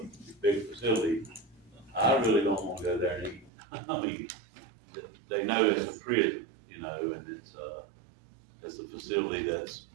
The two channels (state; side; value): drops out; left; at 3.5 s